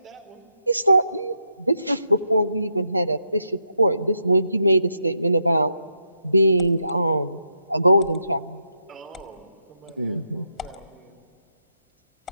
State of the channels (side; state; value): both; inverted; correlation -0.83